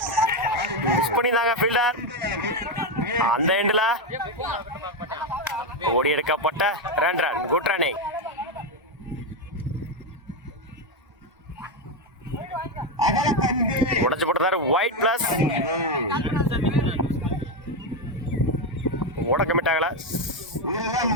மிஸ் பண்ணியிருந்தாங்க ஃபீல்டர். அந்த எண்டில் ஓடி எடுக்கப்பட்ட 2 ரன். Good running. உடச்சு போட்டுறாரு. ஒயிட் பிளஸ் ஓட கமிட் ஆகல.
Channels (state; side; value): normal; both; correlation 0.08